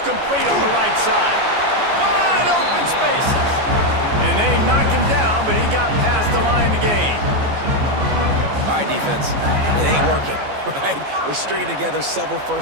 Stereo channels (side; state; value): left; late; 14 ms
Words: complete on the right side. Wide open spaces. And they knocked him down, but he got past the line to gain. All right, defense. It ain't working, right? We're stringing together several